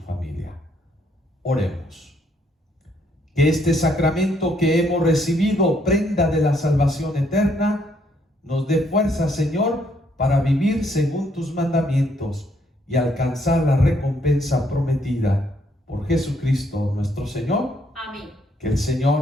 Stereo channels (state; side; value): normal; both; correlation 0.70